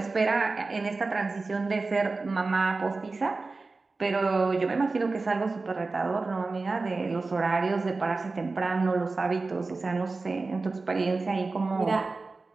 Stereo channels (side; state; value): left; quieter; 3.7 dB